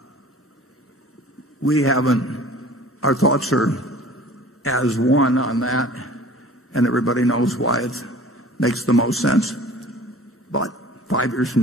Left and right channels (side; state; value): both; normal; correlation 0.46